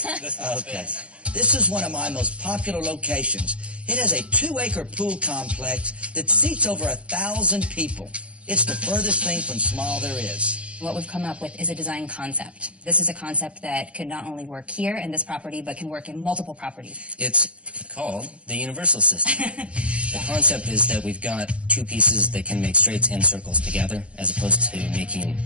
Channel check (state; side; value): late; left; 0.058 ms